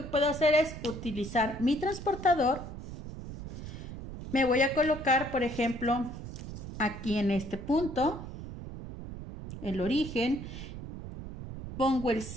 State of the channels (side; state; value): right; noise; rumble, 10 dB below the sound